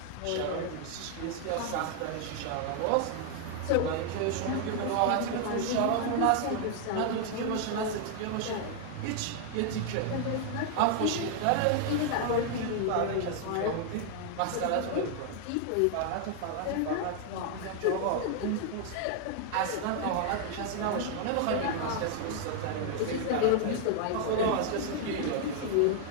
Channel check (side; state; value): both; different; correlation 0.00